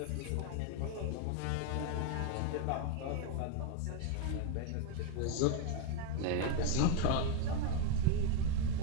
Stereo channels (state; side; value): different; both; correlation 0.01